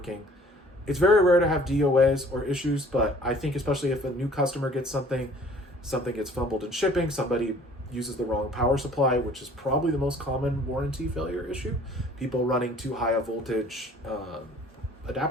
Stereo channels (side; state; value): both; normal; correlation 0.53